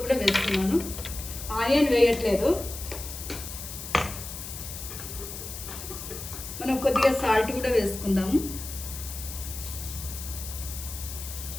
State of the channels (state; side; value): noise; left; hiss, 9 dB below the sound